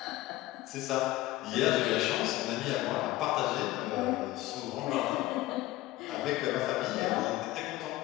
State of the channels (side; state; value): right; quieter; 16.9 dB